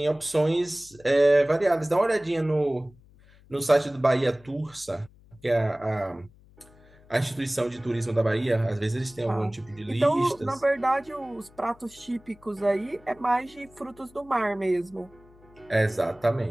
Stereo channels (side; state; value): left; noise; hum, 26 dB below the sound